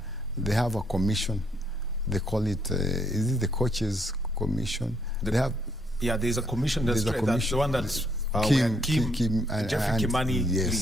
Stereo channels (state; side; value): normal; both; correlation 0.72